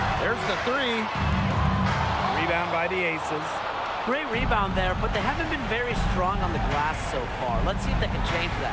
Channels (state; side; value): identical; both; correlation 1.00